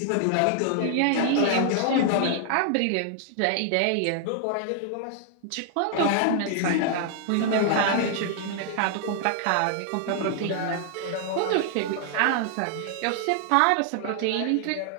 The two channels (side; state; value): both; different; correlation 0.00